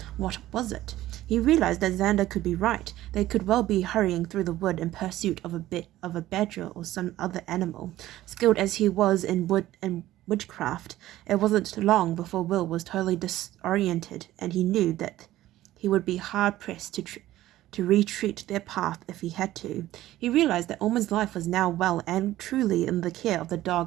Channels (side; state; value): left; quieter; 15.0 dB